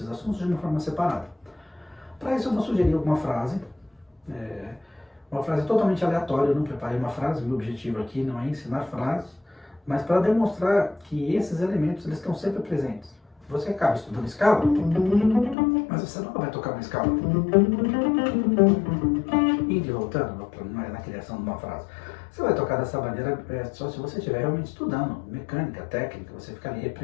assuntos de uma forma separada. Para isso eu vou sugerir uma frase totalmente aleatória. Eu não preparei uma frase, meu objetivo aqui não é ensinar frases, mas para demonstrar que esses elementos eles estão sempre presentes. Você acaba estudando escala, mas você nunca vai tocar uma escala indo e voltando na criação de uma frase. Você vai tocar dessa maneira só se você estiver realmente estudando mecânica, técnica, você ficar ali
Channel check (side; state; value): right; drops out; at 15.6 s